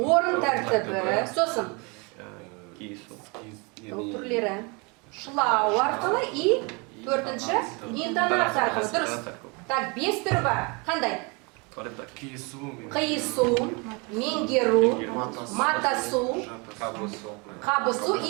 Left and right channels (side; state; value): left; quieter; 30.1 dB